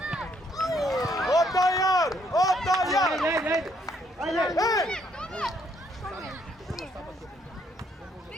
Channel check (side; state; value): both; normal; correlation 0.70